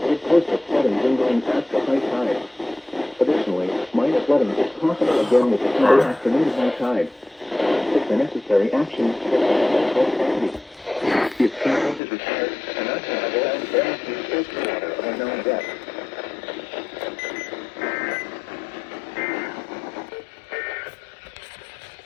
coastal flooding lingering past the high tide. Additionally, minor flooding is possible again with the Sunday afternoon high tide. Take the necessary action to protect both properties. If teamwork is required, an untenable and guaranteed safe water of unknown depth.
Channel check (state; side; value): drops out; right; at 12.0 s